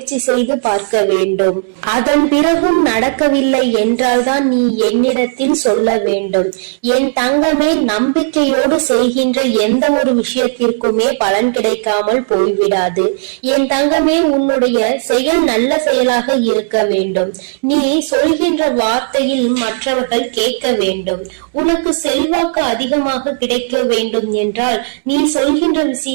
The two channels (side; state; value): left; silent; digital silence